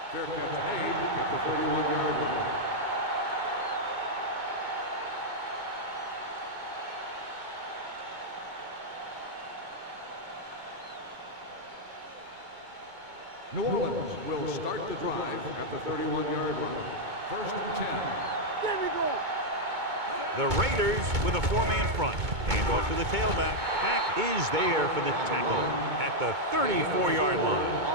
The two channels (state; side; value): late; left; 2.2 ms